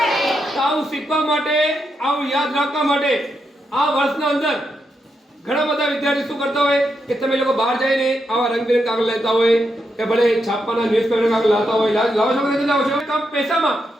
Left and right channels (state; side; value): normal; both; correlation 0.83